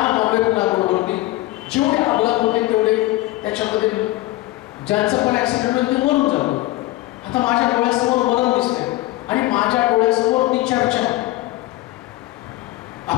बरोबरती जेवढे अपघात होते तेवढे त्याच्यामध्ये ज्यांचं पण ऍक्सिडेंट होईल ते मरून जातो. आता माझ्या डोळ्यासमोर मरण दिसते आणि माझ्या डोळ्यासमोर ती चर्चा.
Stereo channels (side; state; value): right; quieter; 18.0 dB